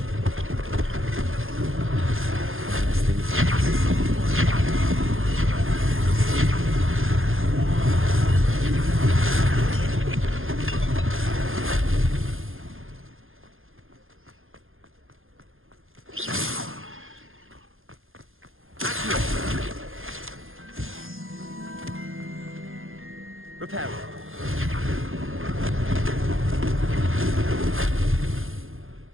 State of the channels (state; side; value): late; left; 0.60 ms